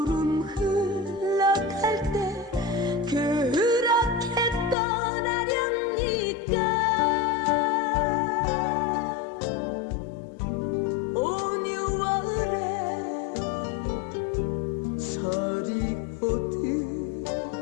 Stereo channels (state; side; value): drops out; right; at 4.8 s